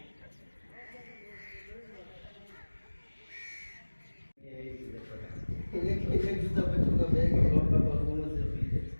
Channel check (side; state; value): both; inverted; correlation -1.00